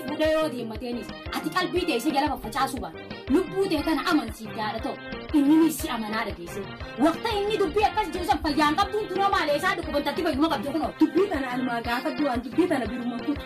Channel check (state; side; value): identical; both; correlation 1.00